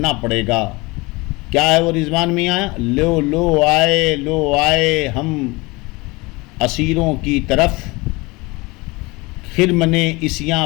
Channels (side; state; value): right; quieter; 24.0 dB